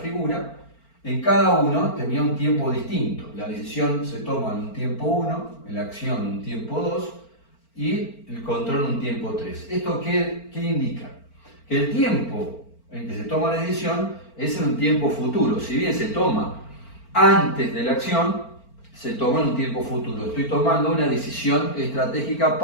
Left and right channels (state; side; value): late; right; 4.4 ms